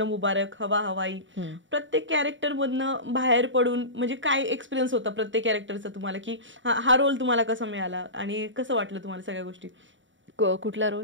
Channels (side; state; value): left; late; 0.55 ms